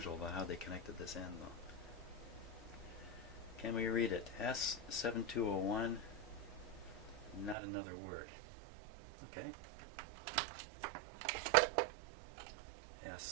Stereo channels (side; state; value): left; drops out; at 7.6 s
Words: about how they connected this end though. Can we read it? S7201, not another word. Okay.